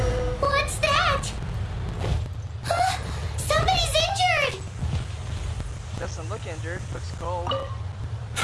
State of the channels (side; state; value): both; identical; correlation 1.00